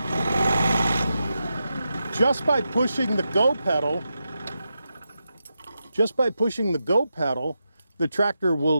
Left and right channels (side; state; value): both; inverted; correlation -0.87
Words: Just by pushing the go pedal, the tractor